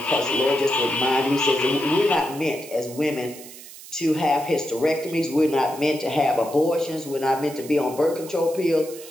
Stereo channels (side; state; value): right; noise; hiss, 16 dB below the sound